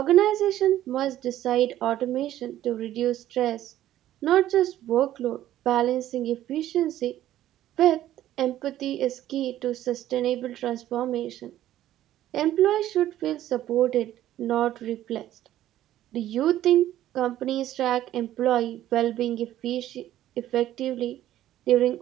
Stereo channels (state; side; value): quieter; left; 13.1 dB